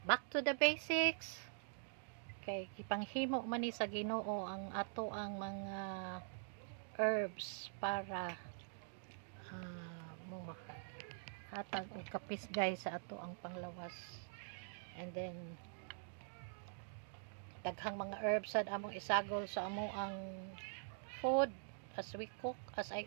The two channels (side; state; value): left; silent; digital silence